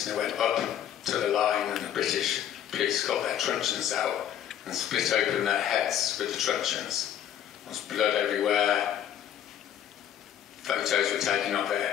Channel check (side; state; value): right; quieter; 10.3 dB